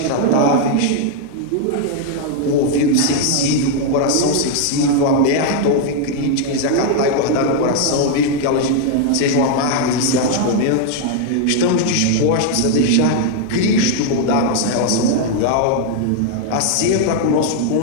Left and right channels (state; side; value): different; both; correlation 0.00